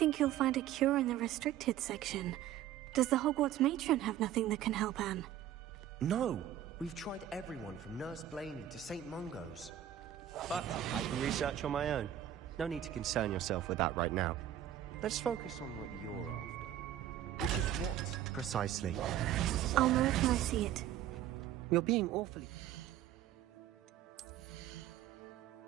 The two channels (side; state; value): left; quieter; 11.5 dB